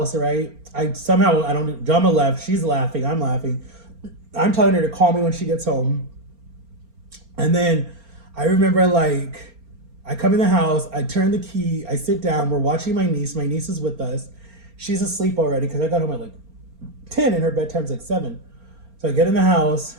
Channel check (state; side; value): late; left; 4.3 ms